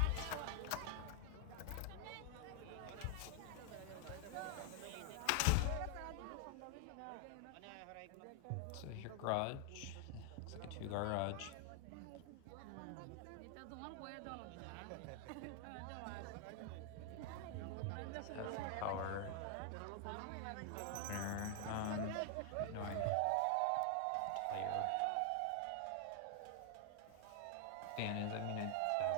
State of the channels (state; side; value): different; both; correlation 0.00